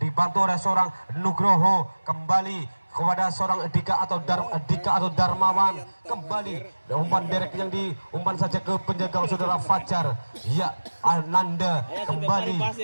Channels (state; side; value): inverted; both; correlation -1.00